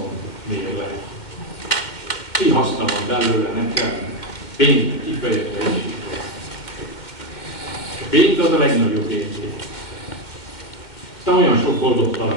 mér le. Mi haszna van belőle nekem? Pénzt kifejezve is. A pénz az a legnagyobb érték. Aztán olyan sok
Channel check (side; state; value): right; late; 2.1 ms